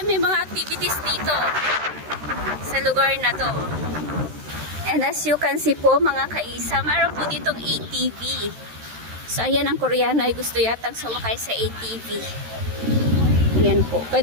may mga activities dito sa lugar na to. And as you can see po mga kaisaw, meron po ditong ATV. So, ayan ang Koreano ay gusto yatang sumakay sa ATV. Ayan po.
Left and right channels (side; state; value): left; late; 13 ms